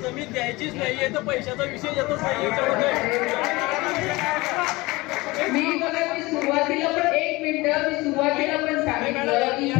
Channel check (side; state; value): right; quieter; 22.0 dB